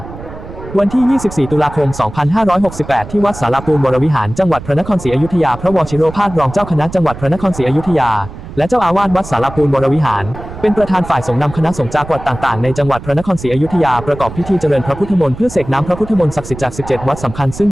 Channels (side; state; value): right; noise; rumble, 13 dB below the sound